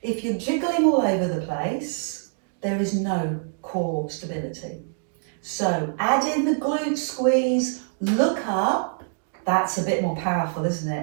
If you're jiggling all over the place, there is no core stability. So add in the glute squeeze, look up. That's a bit more powerful, isn't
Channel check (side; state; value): left; silent; digital silence